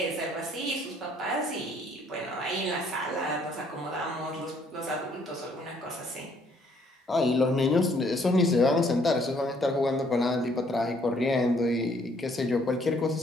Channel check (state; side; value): normal; both; correlation 0.65